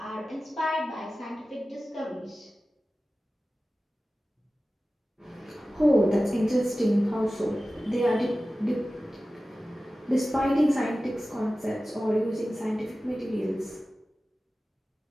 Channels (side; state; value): both; normal; correlation 0.95